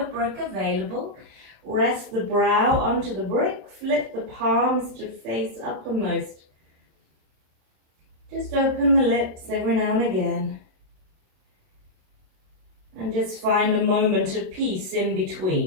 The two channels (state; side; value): late; left; 27 ms